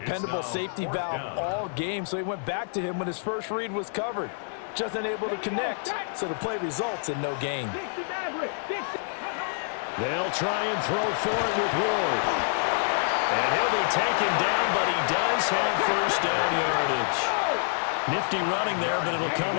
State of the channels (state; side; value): silent; right; 56 dB below the other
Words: safety valve all game, so he went back to him when his first read was covered. Just unable to connect, so the play results in no gain. They'll try and throw for it with Ward. And he'll be taken down, but he does have 1st down yardage. Nifty running there, but it'll come